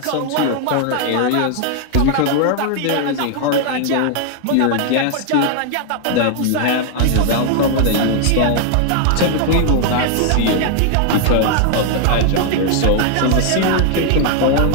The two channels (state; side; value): different; both; correlation 0.00